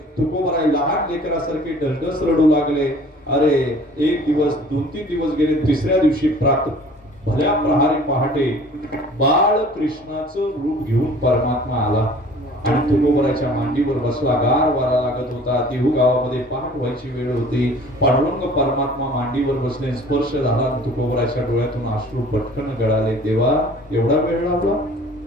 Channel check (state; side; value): normal; both; correlation 0.49